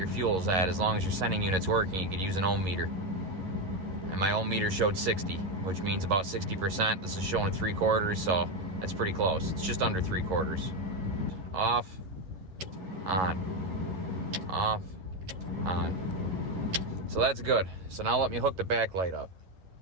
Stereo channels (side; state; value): left; late; 11 ms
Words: fuel's at. As long as your sending unit's working, you could use an ohm meter. and my old meter showed 60, which means about 60%. This is showing 3/4, so that's pretty close. It's just under 3/4. Off, on, off, on. So that's good. So now let me hook the backlight up.